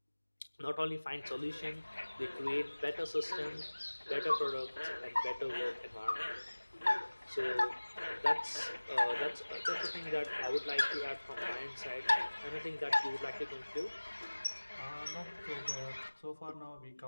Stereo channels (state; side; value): inverted; both; correlation -1.00